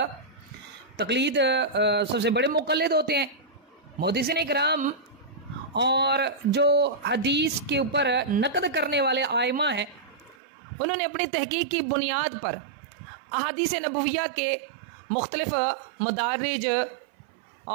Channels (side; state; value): left; drops out; at 10.4 s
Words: तक़लीद सबसे बड़े मुक़ल्लिद होते हैं। मुहद्दिसीन इकराम और जो हदीस के ऊपर नक़द करने वाले आइमा हैं, उन्होंने अपनी तहक़ीक़ की बुनियाद पर अहादीस नबविया के मुख्तलिफ मदारिज